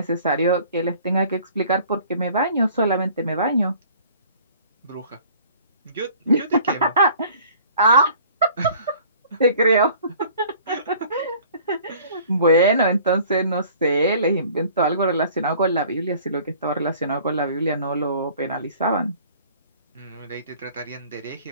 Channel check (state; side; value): inverted; both; correlation -0.52